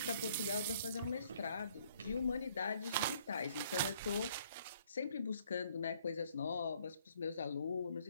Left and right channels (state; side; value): inverted; both; correlation -0.64